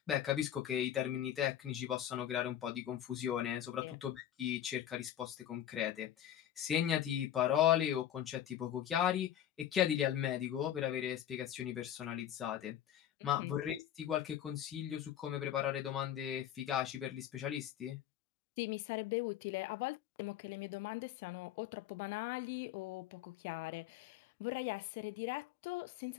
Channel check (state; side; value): quieter; right; 10.9 dB